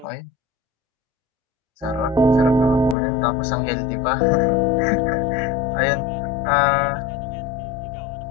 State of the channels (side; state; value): right; drops out; at 3.0 s